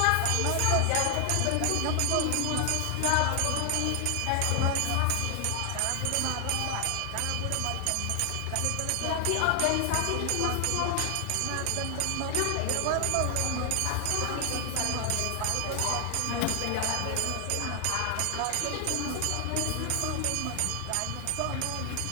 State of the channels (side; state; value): both; different; correlation 0.00